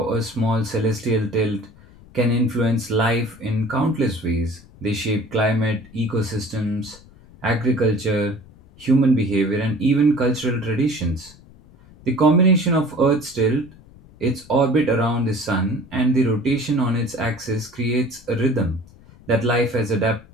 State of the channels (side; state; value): left; noise; rumble, 24 dB below the sound